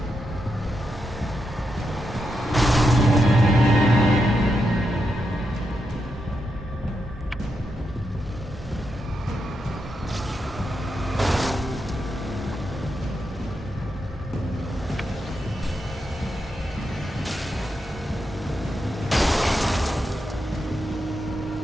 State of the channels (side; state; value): both; normal; correlation 0.85